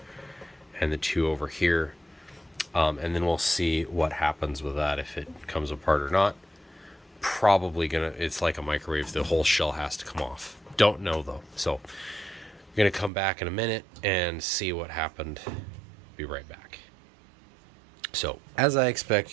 and the 2 over here, and then we'll see what happens with that, if it comes apart or not. Probably gonna, it's like a microwave, the whole shell has to come off. Don't know though, so I'm gonna come back in a minute and see what happened. Be right back. So as I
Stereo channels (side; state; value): left; drops out; at 13.1 s